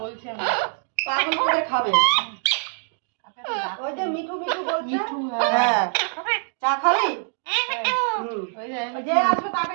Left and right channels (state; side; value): silent; left; 58 dB below the other